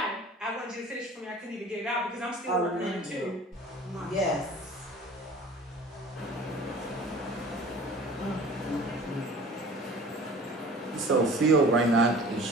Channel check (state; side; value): normal; both; correlation 0.44